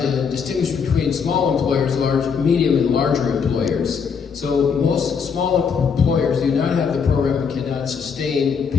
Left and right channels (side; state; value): right; quieter; 6.2 dB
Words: to distinguish between small employers, large, medium, and larger employers. So most small employers do not have the program and cannot sustain